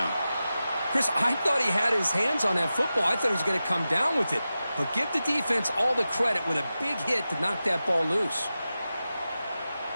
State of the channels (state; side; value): inverted; both; correlation -0.93